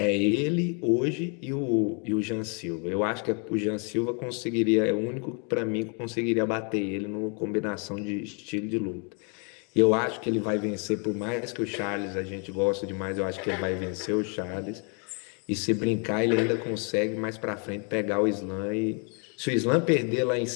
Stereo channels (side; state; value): right; quieter; 37.8 dB